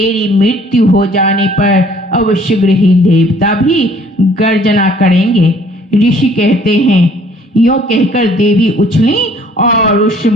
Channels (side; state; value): both; normal; correlation 0.58